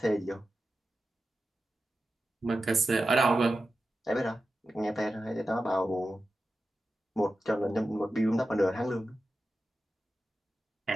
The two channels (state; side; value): normal; both; correlation 0.92